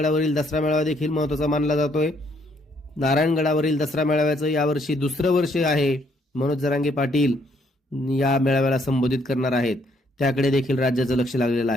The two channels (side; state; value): both; normal; correlation 0.69